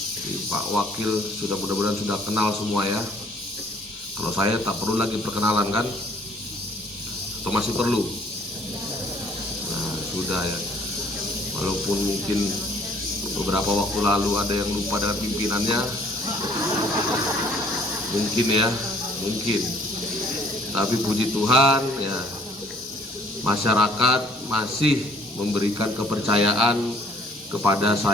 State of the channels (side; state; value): both; normal; correlation 0.59